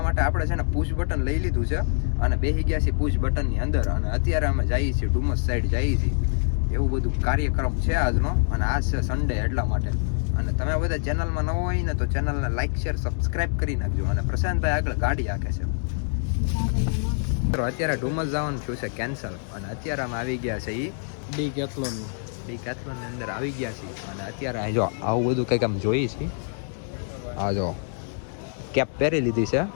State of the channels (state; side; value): silent; right; 61 dB below the other